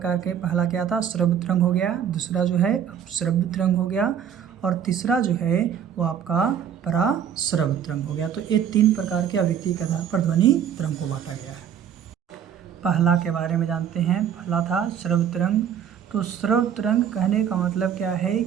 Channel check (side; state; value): left; quieter; 8.7 dB